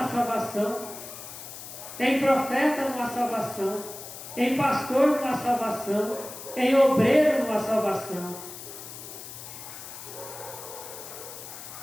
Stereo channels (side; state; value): left; noise; hiss, 12 dB below the sound